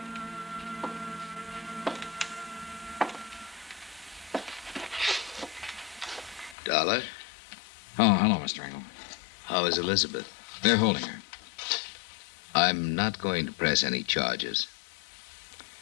Dollar, Oh, hello, Mr. Engel. how is Elizabeth? They're holding her. I'm not going to press any charges.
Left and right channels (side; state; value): right; drops out; at 6.6 s